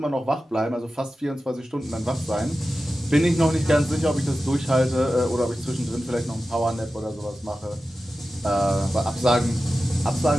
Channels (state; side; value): normal; both; correlation 0.94